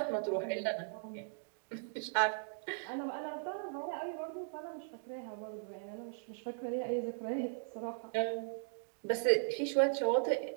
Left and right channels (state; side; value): silent; left; digital silence